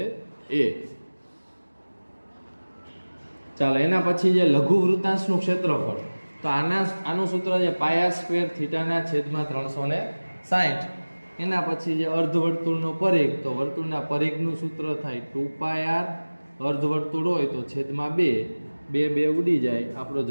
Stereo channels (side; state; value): both; inverted; correlation -1.00